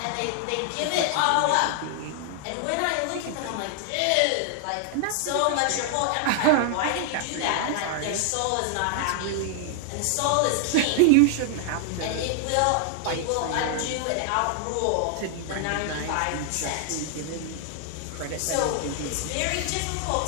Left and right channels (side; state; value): both; different; correlation 0.00